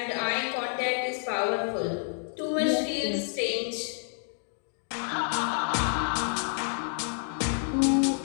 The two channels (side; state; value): right; silent; digital silence